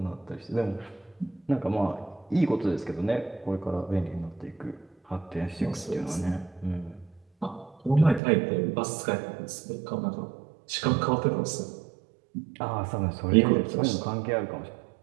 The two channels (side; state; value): left; drops out; at 8.2 s